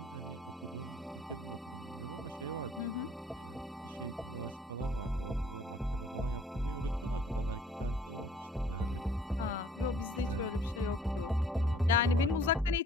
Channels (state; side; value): normal; both; correlation 0.57